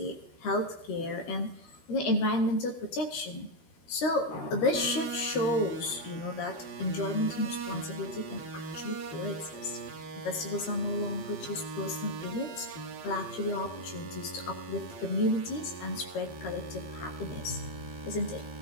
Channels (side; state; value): right; late; 13 ms